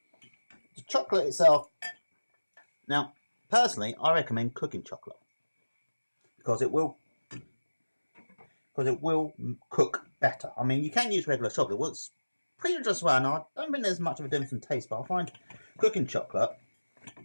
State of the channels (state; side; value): inverted; both; correlation -1.00